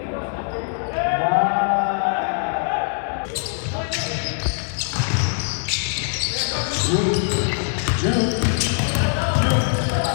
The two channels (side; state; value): right; silent; digital silence